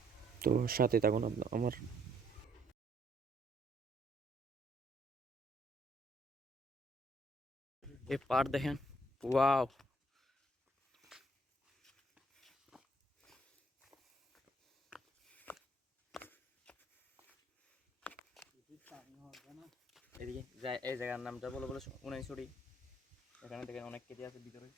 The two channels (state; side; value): normal; both; correlation 0.67